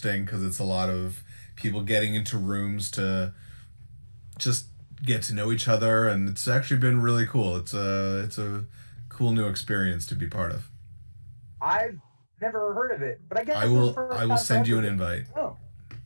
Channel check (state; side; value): inverted; both; correlation -1.00